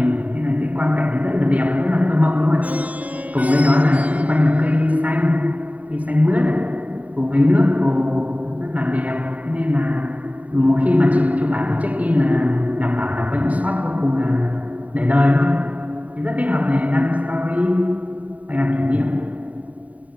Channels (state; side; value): late; left; 0.070 ms